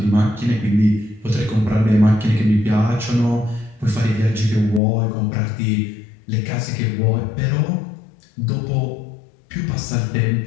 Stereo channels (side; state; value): right; drops out; at 4.8 s